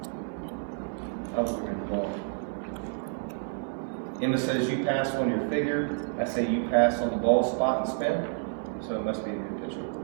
I was looking at the ball. Emma says you pass on your figure. I say you pass on the ball spot and spin. So it must be a good pitcher.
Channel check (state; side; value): silent; left; digital silence